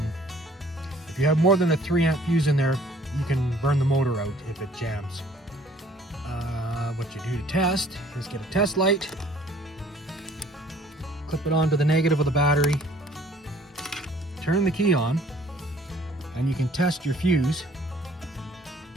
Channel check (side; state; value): both; normal; correlation 0.56